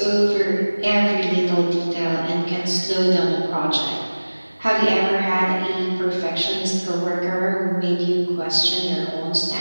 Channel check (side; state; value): both; inverted; correlation -1.00